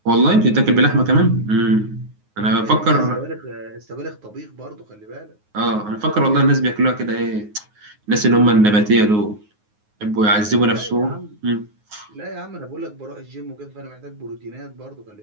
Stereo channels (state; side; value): late; left; 9.5 ms